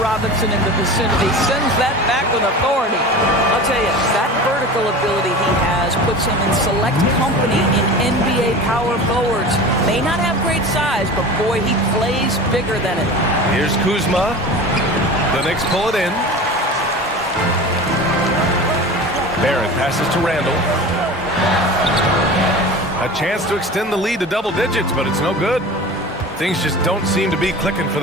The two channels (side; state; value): both; normal; correlation 0.34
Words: in the vicinity. Sends that back with authority. I'll tell you, that vertical ability he has puts him in select company in NBA power forwards. May not have great size, but boy, he plays bigger than it. Here's Kuzma. The Knicks pull it in. Barrett passes to Randall. A chance to extend the lead to double digits, but it's no good. Things just don't seem to be clicking for